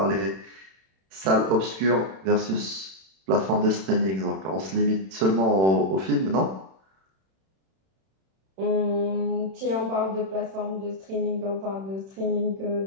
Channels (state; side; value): late; left; 31 ms